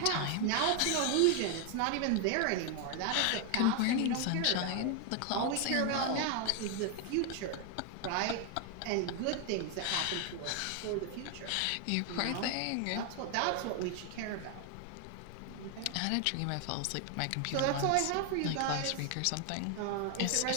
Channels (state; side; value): different; both; correlation 0.00